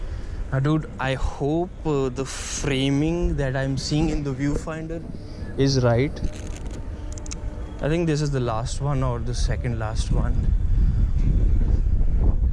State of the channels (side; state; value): both; identical; correlation 1.00